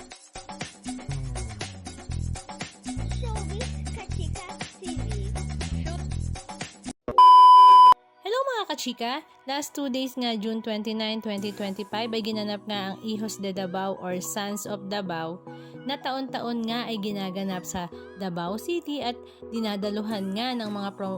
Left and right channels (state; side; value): identical; both; correlation 1.00